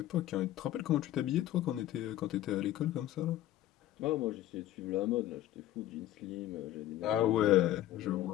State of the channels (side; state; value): right; quieter; 13.6 dB